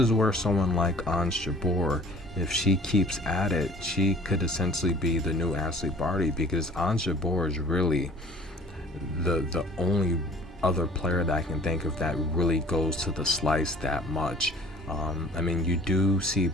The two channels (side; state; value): both; normal; correlation 0.51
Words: where someone like Ons Jabeur, if she keeps at it, she could essentially be the new Ashleigh Barty, because Ons Jabeur is really the only other player that I can think of that really goes to the slice that much. I mean, you do see